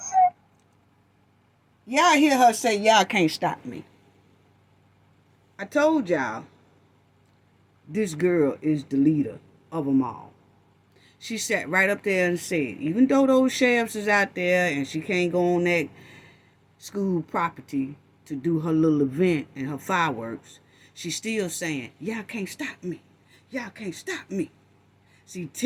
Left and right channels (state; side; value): identical; both; correlation 1.00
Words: Y'all hear her say, y'all can't stop me. I told y'all, this girl is the leader of them all. She sat right up there and said, even though those sheriffs is out there and she can't go on that school property to do her little event and her fireworks, she's still saying, y'all can't stop me. Y'all can't stop me. See,